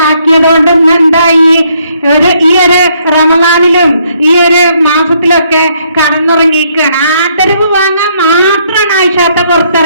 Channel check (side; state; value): both; inverted; correlation -0.70